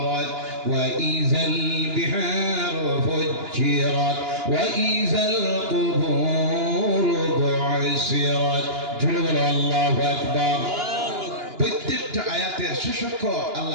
ওয়া ইযাল বিহারু ফুজ্জিরাত ওয়া ইযাল কুবুর বু'সিরাত। জোরে বলো আল্লাহু আকবার। প্রত্যেকটা আয়াতের শেষক্ষ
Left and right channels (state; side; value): late; left; 2.9 ms